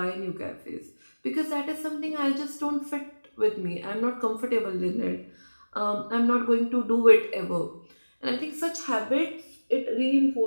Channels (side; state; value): both; inverted; correlation -1.00